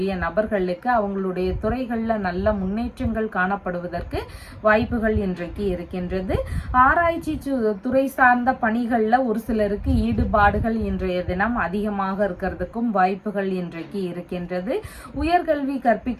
நபர்களுக்கு அவங்களுடைய துறைகள்ல நல்ல முன்னேற்றங்கள் காணப்படுவதற்கு வாய்ப்புகள் இன்றைக்கு இருக்கின்றது. ஆராய்ச்சி துறை சார்ந்த பணிகள்ல ஒரு சிலருக்கு ஈடுபாடுகள் இன்றைய தினம் அதிகமாக இருக்கிறதுக்கும் வாய்ப்புகள் இன்றைக்கு இருக்கின்றது. உயர்கல்வி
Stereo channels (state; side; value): identical; both; correlation 1.00